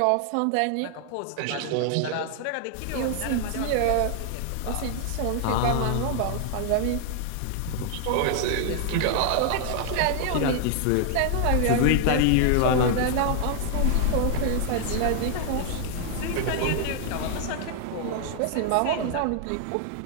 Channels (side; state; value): both; different; correlation 0.00